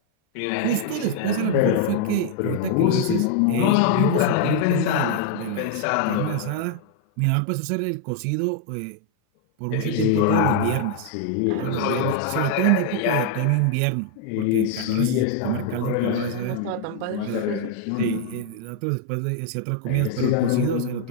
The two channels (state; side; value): different; both; correlation 0.00